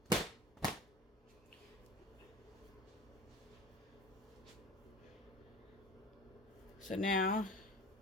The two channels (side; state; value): both; normal; correlation 0.38